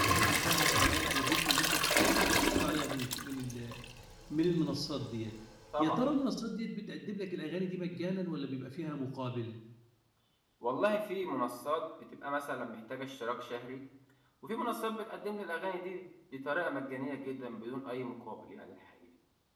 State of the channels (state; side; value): identical; both; correlation 1.00